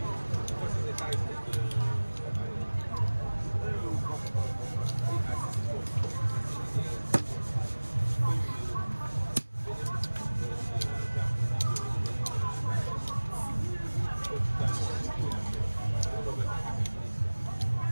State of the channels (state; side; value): inverted; both; correlation -1.00